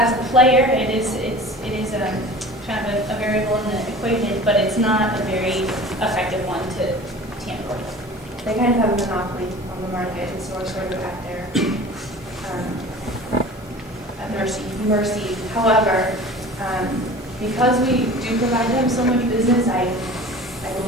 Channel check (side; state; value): both; normal; correlation 0.40